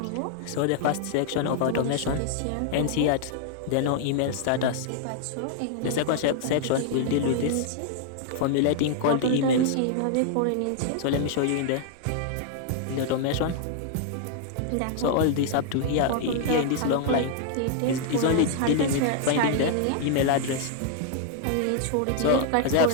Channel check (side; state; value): both; different; correlation 0.00